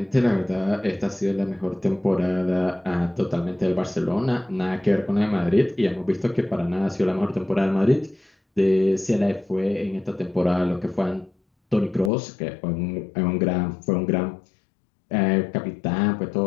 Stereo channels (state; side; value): drops out; right; at 12.1 s